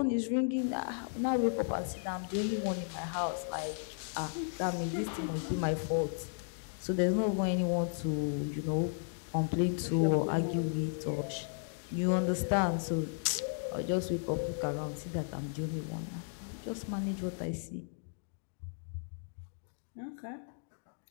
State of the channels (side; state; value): right; silent; digital silence